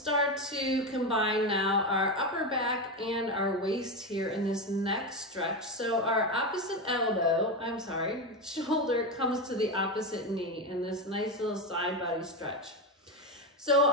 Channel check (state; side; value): normal; both; correlation 0.14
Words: to combine now our upper back and our waist here in this next stretch. So our shoulder comes to the opposite knee in this nice little side body stretch. So